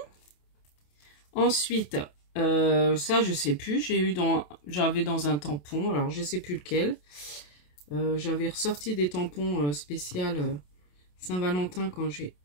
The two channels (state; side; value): late; right; 27 ms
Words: Ensuite, ça je sais plus, j'avais dans un tampon, alors je sais plus lequel. J'avais ressorti des tampons spéciaux Saint-Valentin quand j'ai